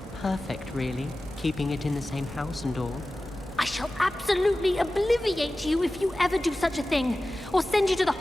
Perfect, really. Keeping it in the same house and all. I shall absolutely obliviate you if you ever do such a thing, or send you to the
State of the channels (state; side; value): normal; both; correlation 0.96